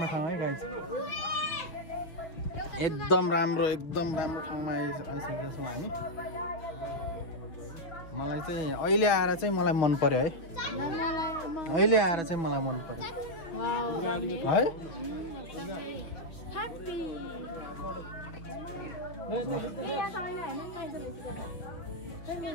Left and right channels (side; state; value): right; late; 6.0 ms